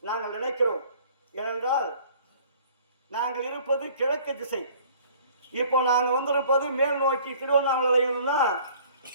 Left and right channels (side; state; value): both; inverted; correlation -0.53